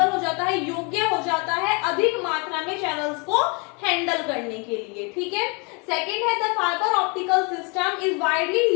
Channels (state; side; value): quieter; right; 32.1 dB